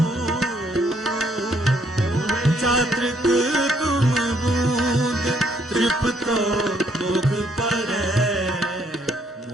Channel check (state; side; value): normal; both; correlation 0.69